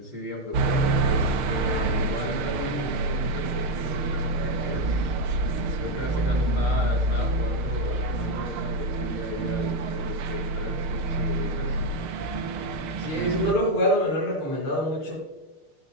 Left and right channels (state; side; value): late; left; 6.6 ms